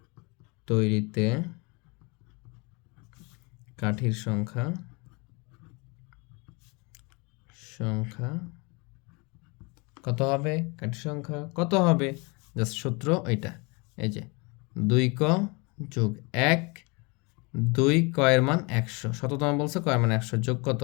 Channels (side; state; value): right; quieter; 29.2 dB